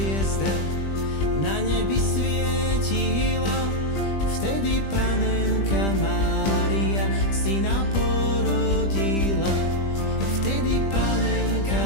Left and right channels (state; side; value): late; right; 20 ms